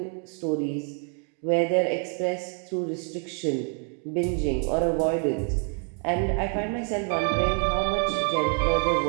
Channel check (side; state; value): left; quieter; 39.6 dB